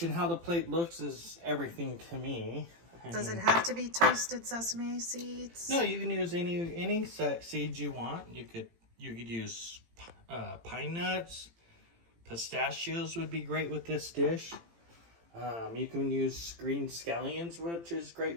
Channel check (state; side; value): late; left; 18 ms